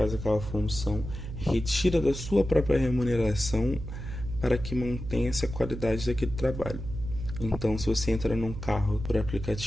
aquela função retira da sua própria remuneração para que mantenha-se a qualidade daquele trabalho. Então, se você entra num carro por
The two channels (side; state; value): right; noise; hum, 8 dB below the sound